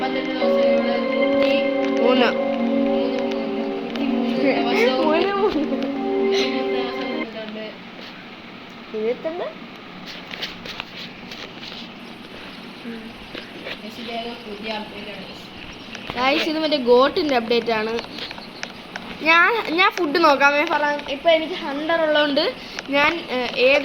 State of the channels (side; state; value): both; identical; correlation 1.00